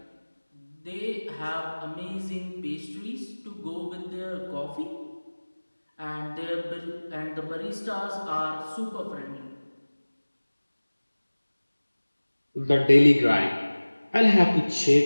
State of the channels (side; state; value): both; inverted; correlation -1.00